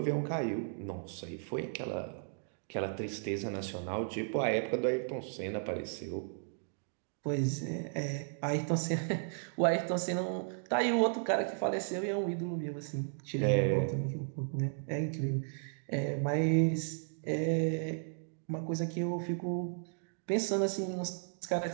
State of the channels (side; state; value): left; silent; digital silence